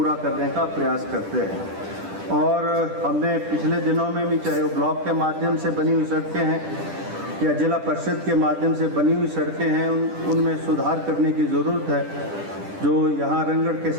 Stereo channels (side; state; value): left; late; 10 ms